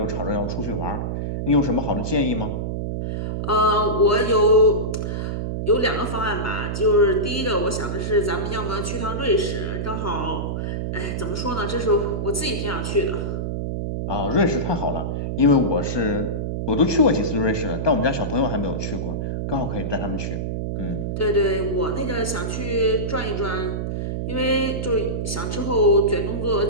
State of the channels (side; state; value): right; noise; hum, 2 dB below the sound